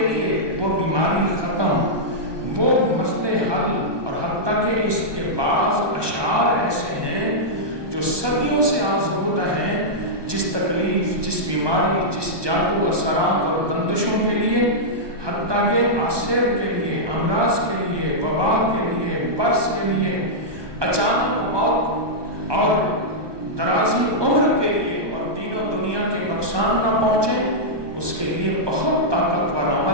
لیے وہ بیماری ختم، وہ مسئلے حل۔ اور حتیٰ کہ اس کے بعض اشعار ایسے ہیں جو صدیوں سے آزمودہ ہیں، جس تکلیف، جس بیماری، جس جادو اثرات اور بندشوں کے لیے، حتیٰ کہ آسیب کے لیے، امراض کے لیے، وبا کے لیے، برس کے لیے، اچانک موت اور درازی عمر کے لیے، اور دین و دنیا کے نقصان نہ پہنچے، اس کے لیے بہت طاقتور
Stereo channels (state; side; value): late; left; 1.2 ms